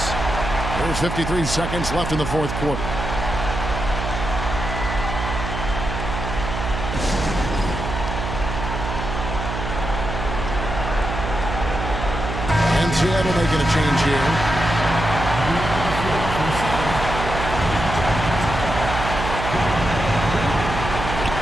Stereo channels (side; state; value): right; noise; hum, 5 dB below the sound